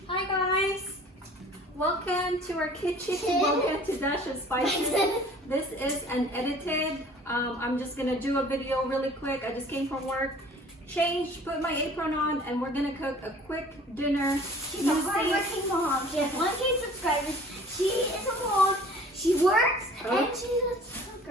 Hi guys! Welcome to our kitchen. Welcome to Dash of Spices. This is an edited. I'm just gonna do a video really quick. I just came from work, changed, put my apron on, and we're gonna cook a quick dinner. She's a hardworking mom. She has 1K subscribers. She is a mom. She works and she's a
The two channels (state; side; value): normal; both; correlation 0.49